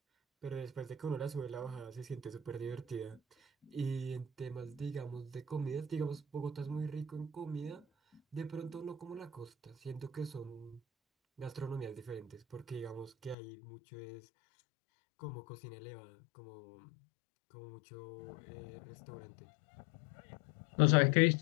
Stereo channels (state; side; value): drops out; right; at 13.4 s